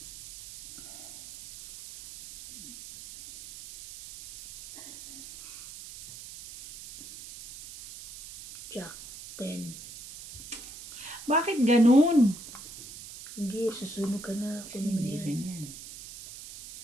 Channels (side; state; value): right; noise; hiss, 14 dB below the sound